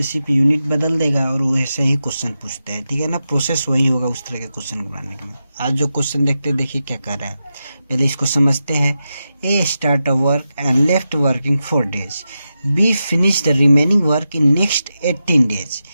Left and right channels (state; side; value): inverted; both; correlation -0.90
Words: सिर्फ यूनिट बदल देगा और वो ऐसे ही क्वेश्चन पूछते हैं, ठीक है ना। प्रोसेस वही होगा उस तरह के क्वेश्चन को बनाने के लिए। आज जो क्वेश्चन देखते हैं, देखिए क्या कर रहा है, पहले इसको समझते हैं। A start a work and left working 4 days, B finish the remaining work in next 18 days।